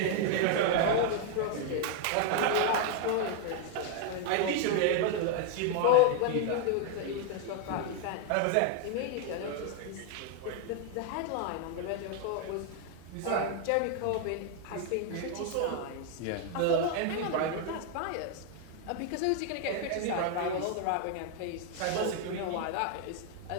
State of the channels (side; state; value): both; different; correlation 0.00